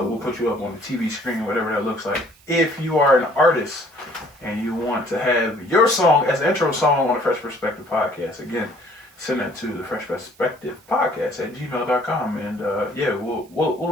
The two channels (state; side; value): noise; right; hiss, 28 dB below the sound